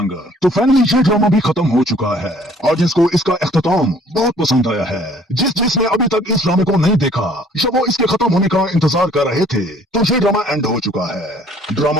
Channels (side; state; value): both; normal; correlation 0.57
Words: तो फाइनली ये ड्रामा भी खत्म हो चुका है और जिसको इसका इख्तिताम बहुत पसंद आया है, जिसने अभी तक इस ड्रामे को नहीं देखा या वो इसके खत्म होने का इंतजार कर रहे थे, तो ये ड्रामा एंड हो चुका है।